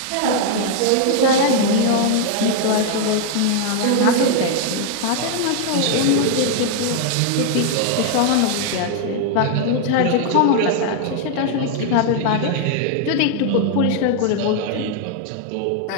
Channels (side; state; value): both; different; correlation 0.00